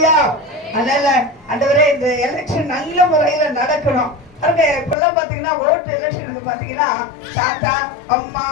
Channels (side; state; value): right; drops out; at 5.0 s